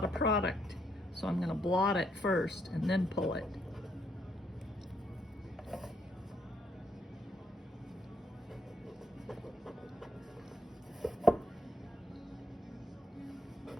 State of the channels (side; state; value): both; normal; correlation 0.73